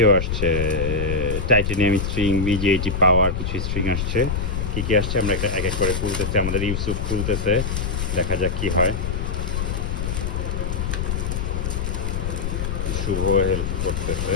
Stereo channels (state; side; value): noise; left; rumble, 2 dB below the sound